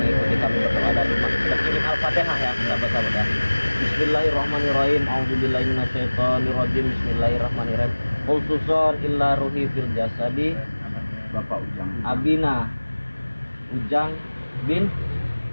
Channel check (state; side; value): inverted; both; correlation -1.00